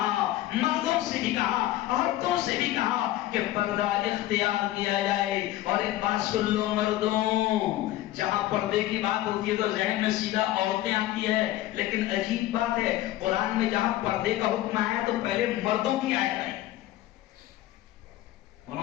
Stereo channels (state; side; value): quieter; right; 15.1 dB